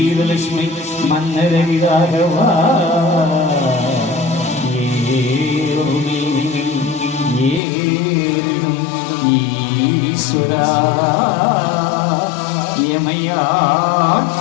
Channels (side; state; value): right; drops out; at 7.6 s